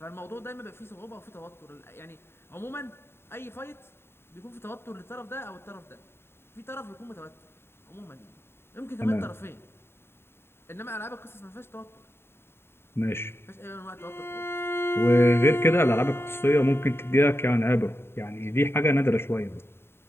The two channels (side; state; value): right; late; 0.11 ms